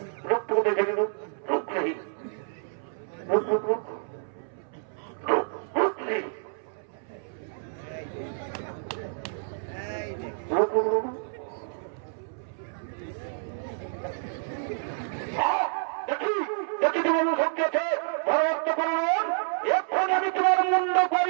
রূপ টুকু দেখে নি, রূপ রূপ রে, রূপ রূপ রূপ রূপ রূপ রে, রূপ রূপ রূপ। দেখি দেখি তোমার শক্তি আছে, ভরত করুন, এখন আমি তোমার মুন্ড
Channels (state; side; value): silent; left; 59 dB below the other